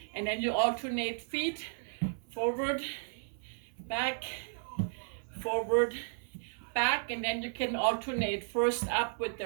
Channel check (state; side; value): silent; left; 55 dB below the other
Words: And then you alternate feet, forward, back, forward, back, and then you can alternate first up with